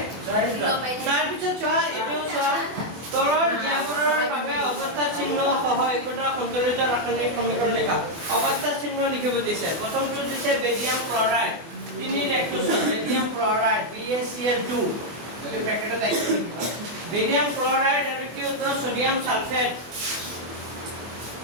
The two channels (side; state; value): left; late; 24 ms